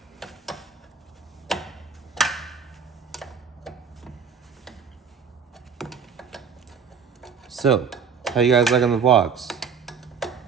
So, how you guys liking the vlogs?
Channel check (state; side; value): quieter; left; 6.4 dB